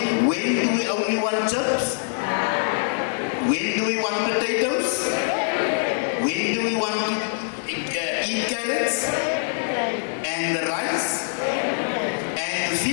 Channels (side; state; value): right; silent; 63 dB below the other